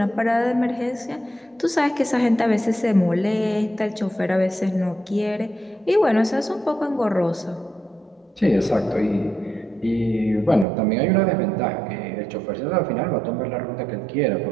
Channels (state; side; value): drops out; left; at 10.7 s